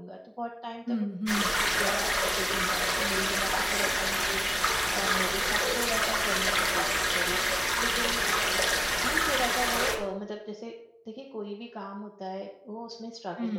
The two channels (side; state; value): both; identical; correlation 1.00